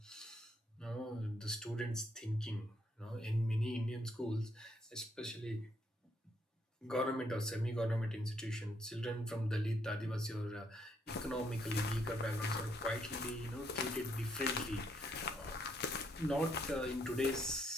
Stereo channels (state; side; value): normal; both; correlation 0.73